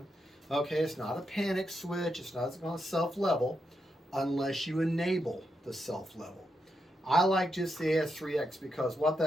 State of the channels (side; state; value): both; normal; correlation 0.84